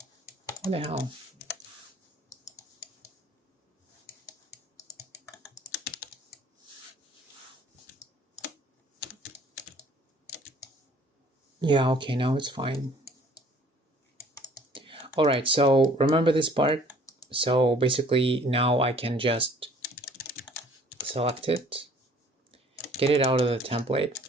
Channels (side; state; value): both; normal; correlation 0.54